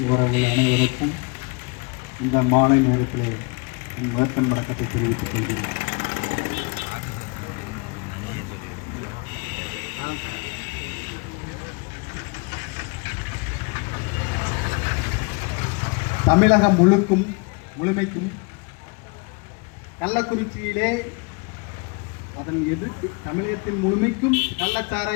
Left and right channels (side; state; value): right; quieter; 31.5 dB